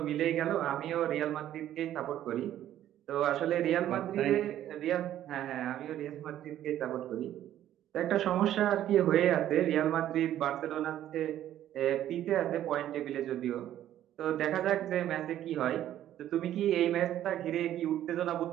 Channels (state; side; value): quieter; left; 12.1 dB